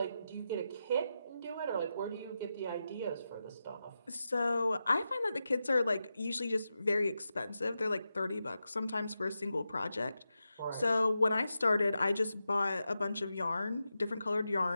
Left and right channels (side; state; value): both; inverted; correlation -0.89